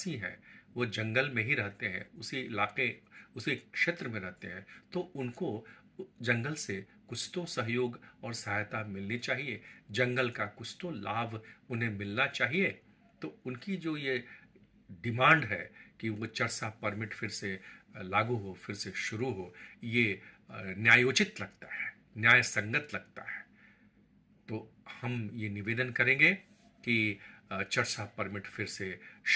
हैं, वो जंगल में ही रहते हैं, उसी इलाके, उसी क्षेत्र में रहते हैं, तो उनको जंगल से कुछ तो सहयोग और सहायता मिलनी चाहिए, जंगल का कुछ तो लाभ उन्हें मिलना चाहिए। तो उनकी जो ये डिमांड है कि वो चरसा परमिट फिर से लागू हो, फिर से शुरू हो, ये न्यायोचित लगता है, न्याय संगत लगता है। तो हम ये निवेदन करेंगे कि चरसा परमिट फिर से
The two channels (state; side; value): identical; both; correlation 1.00